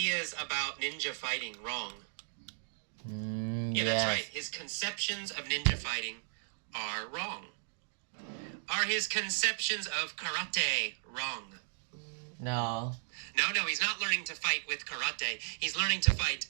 about ninja fighting wrong? Yeah, yes. That's right. His conceptions of ninja fighting are wrong. Are his conceptions of karate wrong? No. No, he's not learning to fight with karate. He's learning to fight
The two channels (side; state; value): left; silent; digital silence